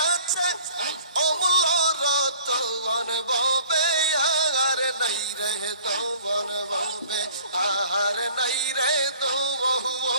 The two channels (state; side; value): inverted; both; correlation -0.51